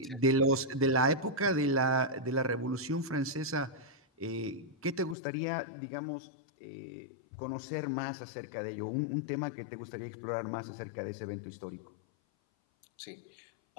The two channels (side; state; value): right; drops out; at 5.2 s